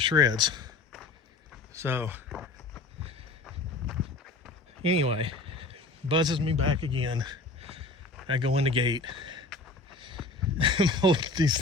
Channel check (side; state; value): right; quieter; 3.4 dB